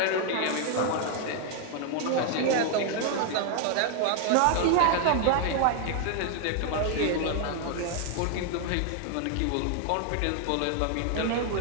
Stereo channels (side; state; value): both; different; correlation 0.00